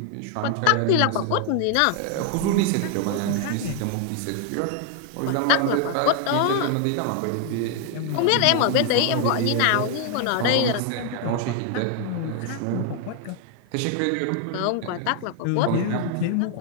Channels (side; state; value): both; different; correlation 0.00